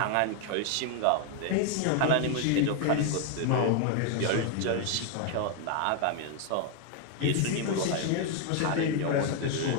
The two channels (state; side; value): different; both; correlation 0.01